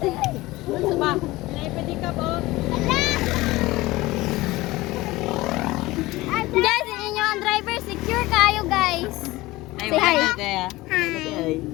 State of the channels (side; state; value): right; quieter; 19.5 dB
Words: te. Ano ba? Pwede ka po. Guys, yung inyong driver, secure kayo guys. Ay, Say hi. wala, te, ah. Ay.